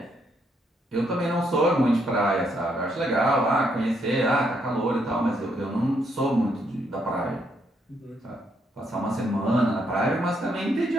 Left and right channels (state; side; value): normal; both; correlation 0.74